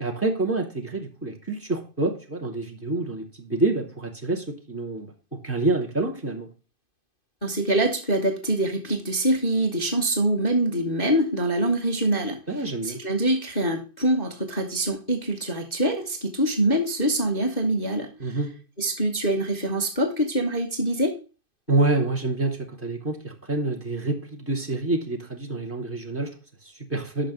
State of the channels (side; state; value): right; late; 2.5 ms